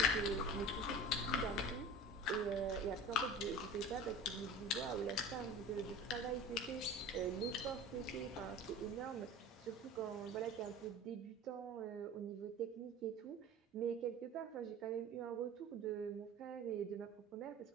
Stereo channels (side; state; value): both; normal; correlation 0.37